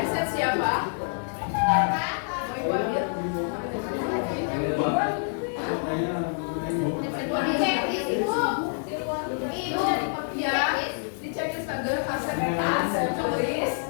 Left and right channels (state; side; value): silent; right; 60 dB below the other